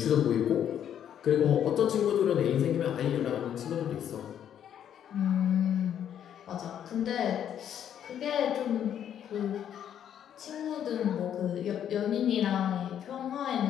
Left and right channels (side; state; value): right; quieter; 9.6 dB